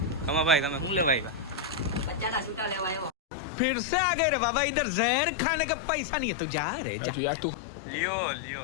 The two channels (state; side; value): drops out; right; at 3.1 s